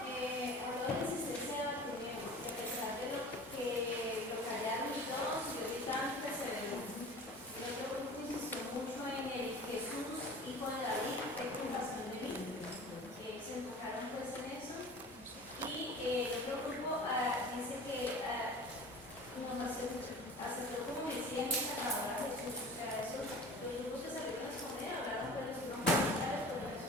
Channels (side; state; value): both; normal; correlation 0.40